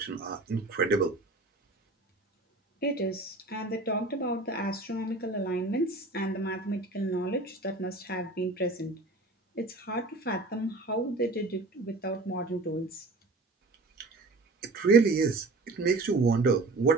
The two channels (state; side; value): quieter; left; 3.1 dB